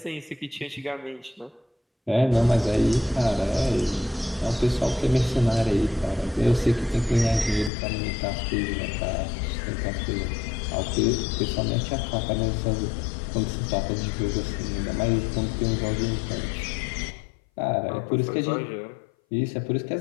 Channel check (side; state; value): right; drops out; at 7.7 s